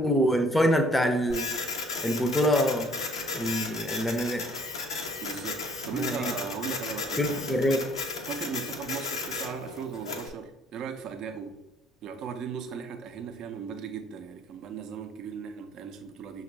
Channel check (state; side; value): normal; both; correlation 0.60